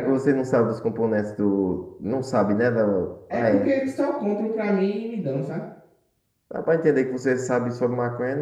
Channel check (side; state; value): both; identical; correlation 1.00